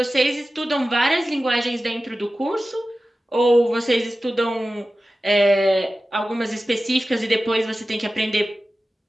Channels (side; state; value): both; normal; correlation 0.95